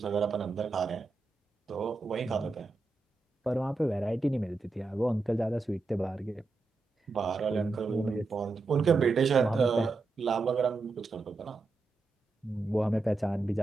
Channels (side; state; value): left; quieter; 3.6 dB